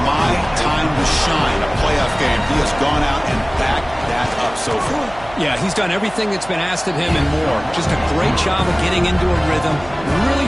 my time to shine. A playoff game. He has gone out and backed that up so far. Yeah, he's done everything that's been asked of him and more. Just a great job of getting into a rhythm. Really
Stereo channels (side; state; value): right; noise; hum, 18 dB below the sound